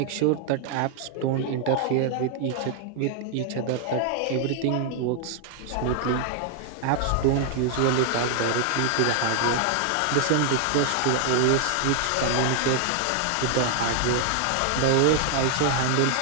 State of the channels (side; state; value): both; different; correlation 0.00